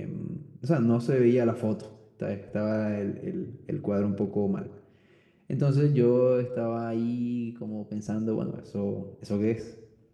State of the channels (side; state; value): both; identical; correlation 1.00